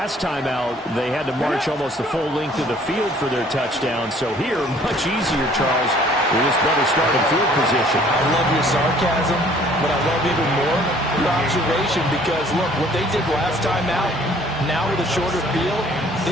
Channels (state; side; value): normal; both; correlation 0.57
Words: time out, they had to march almost the full length of the field for their touchdown. So here, much easier, Charles, with this better starting field position. I love your sarcasm, but I love even more your observation, because, look, what they did last time out, now with a shorter field,